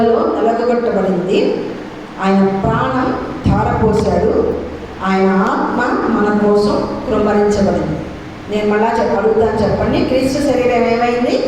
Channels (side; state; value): both; identical; correlation 1.00